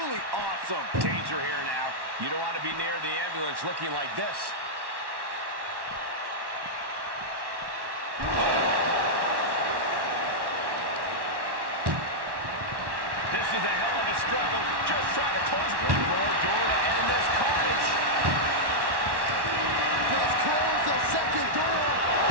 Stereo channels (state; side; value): late; left; 1.1 ms